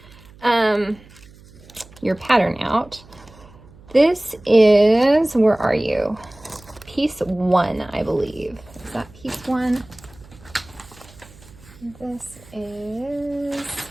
your pattern out. This is, where are you? Piece 1, I believe. Is that piece 1? This is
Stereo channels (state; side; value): noise; right; hum, 23 dB below the sound